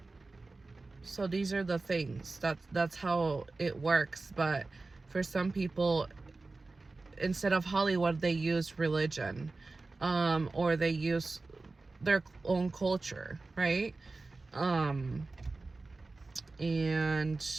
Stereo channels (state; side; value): quieter; left; 3.5 dB